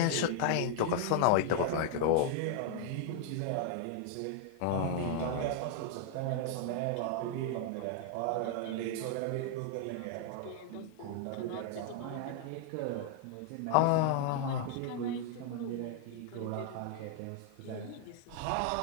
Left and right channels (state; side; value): different; both; correlation 0.00